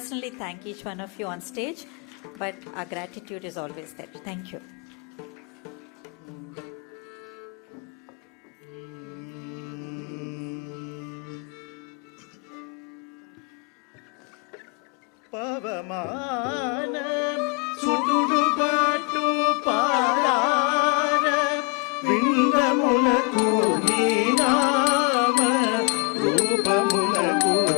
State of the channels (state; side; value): quieter; right; 30.3 dB